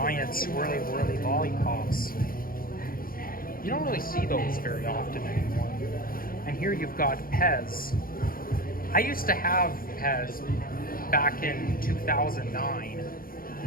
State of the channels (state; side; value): late; right; 0.42 ms